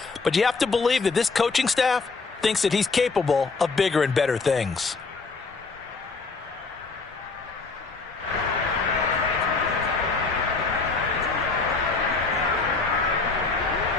But you have to believe that this coaching staff thinks that he's capable of bigger and better things.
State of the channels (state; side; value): quieter; right; 4.2 dB